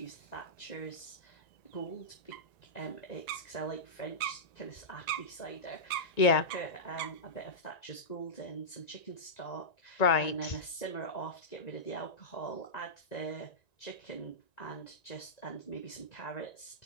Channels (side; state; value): right; late; 1.9 ms